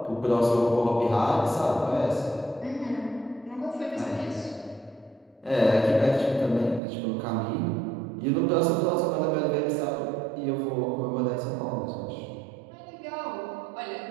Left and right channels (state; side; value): drops out; left; at 6.8 s